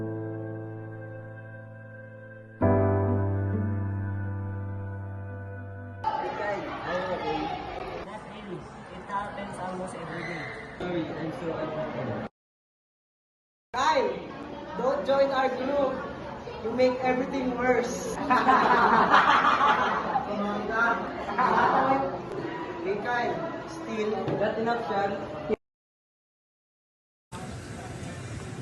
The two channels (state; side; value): identical; both; correlation 1.00